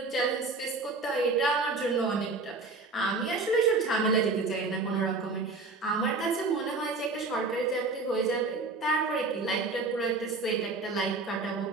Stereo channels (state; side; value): quieter; left; 3.7 dB